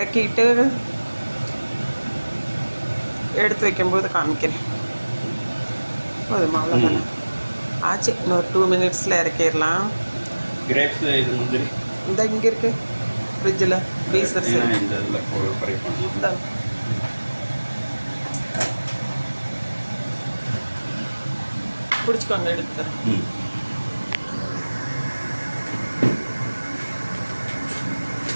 எடுத்து வைக்கும்போது காமிக்கிறேன். போதுமா? அவ்வளோதானே ஆச்சு. இன்னொரு 2 மினிட்ஸில் இறக்கிடலாம். கிரேப்ஸ் இது முந்திரி இந்த இங்கே இருக்குது ஃப்ரிட்ஜில், ஃப்ரீசர் சரி. பிடிச்சிக்கோங்க, எடுத்து தரேன்.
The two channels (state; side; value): inverted; both; correlation -1.00